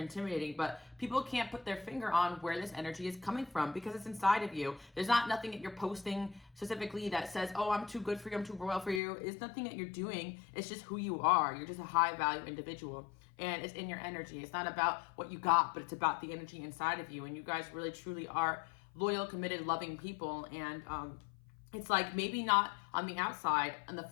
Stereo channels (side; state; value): right; drops out; at 9.0 s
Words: but people can't put their finger on where this energy is coming from because it's inside of you. There's not nothing that you're posting specifically that says, oh, I'm too good for you, I'm too royal for you. It's nothing that you're doing. It's just who you are. You're just a high value individual, and it's in your energy. It's not about what you got, but it's about the energy inside of you, and you guys really truly are loyal, committed, loving people. And it's like maybe not on the outside, on the